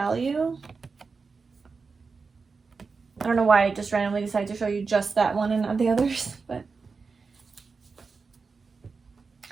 I don't know why I just randomly decided to show you just that one and not the others, but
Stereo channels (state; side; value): quieter; left; 4.7 dB